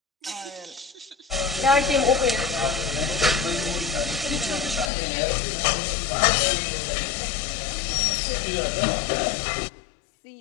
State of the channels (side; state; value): right; drops out; at 4.9 s